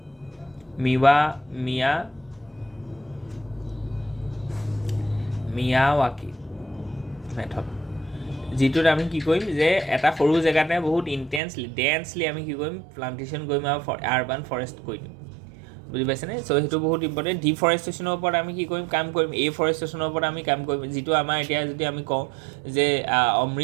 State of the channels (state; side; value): drops out; left; at 11.4 s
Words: মিয়াৱাকি মেথড, যিটোত আমি কি কৰিম, যে এটা সৰু জেগাতে বহুত ডেন্সলি আমি কি কৰিম, প্লান্টেশ্যন কৰিম আৰু আৰ্বান ফৰেষ্ট কৰি দিম। বুজি পাইছেনে? চ' সেইটো বহুত ইম্পৰ্টেণ্ট। ডিফৰেষ্টেশ্যনৰ ওপৰত আমি কি কৰিম, কাম কৰিম। এফৰেষ্টেশ্যনৰ ওপৰত আমি কাম কৰিম, যিটো আমাৰ এতিয়া যদি আমি কওঁ যে